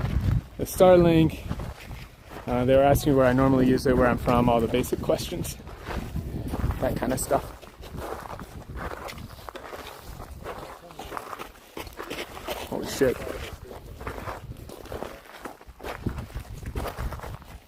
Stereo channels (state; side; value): identical; both; correlation 1.00